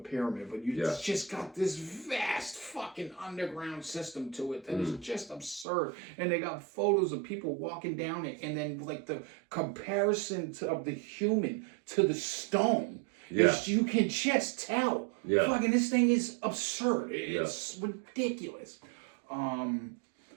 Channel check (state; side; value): drops out; left; at 5.7 s